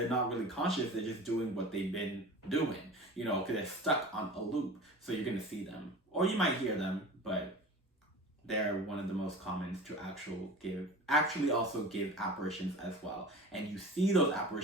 not really conscious, they're just doing what they've been doing, you know, because they're stuck on a loop. So you're gonna see them, or you might hear them, but they're one of the most common to actually also give apparitions as well. And you see those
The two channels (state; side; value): normal; both; correlation 0.36